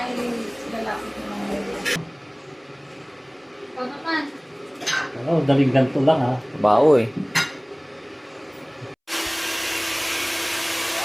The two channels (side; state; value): both; identical; correlation 1.00